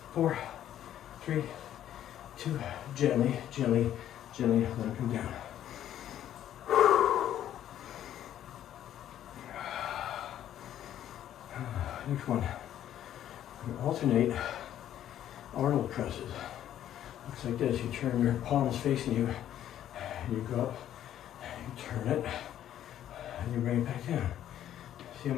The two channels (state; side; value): quieter; right; 11.3 dB